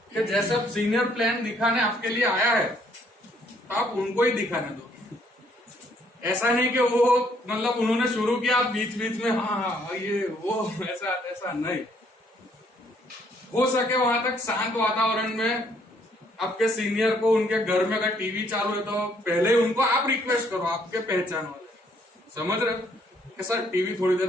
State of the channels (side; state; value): both; normal; correlation 0.67